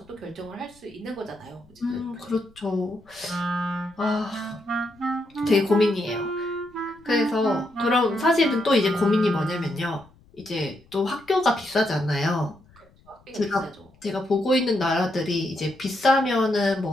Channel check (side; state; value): left; noise; rumble, 29 dB below the sound